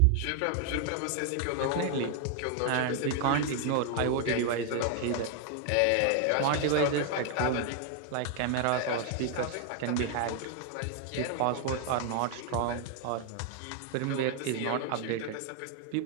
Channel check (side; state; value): both; different; correlation 0.00